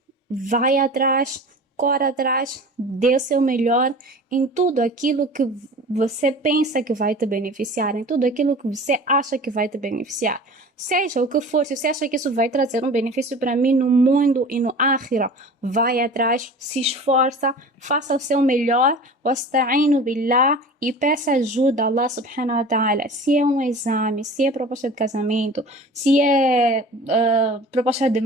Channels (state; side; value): normal; both; correlation 0.39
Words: vai atrás, corre atrás, dê o seu melhor em tudo aquilo que você pensa que vai te beneficiar, em tudo aquilo que você acha que vai te beneficiar. Seja o que for, se você acha que isso vai trazer um benefício para mim no mundo e no akhira, vai atrás, se esforça, faça o seu melhor, wasta'inu billah, e peça ajuda a Allah subhanahu wa ta'ala. Se é um exame, se é proposta de casamento, se é proposta de